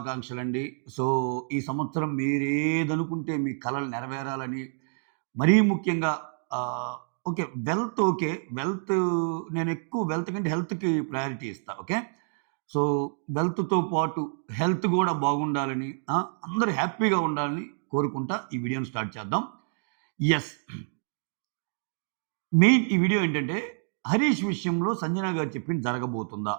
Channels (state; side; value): silent; left; digital silence